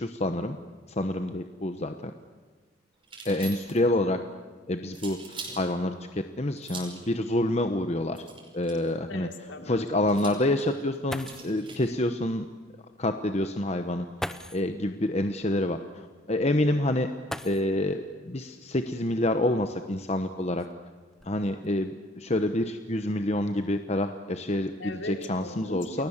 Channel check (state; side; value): normal; both; correlation 0.56